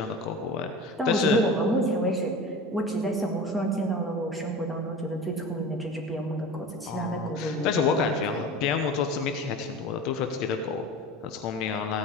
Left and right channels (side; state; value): both; normal; correlation 0.34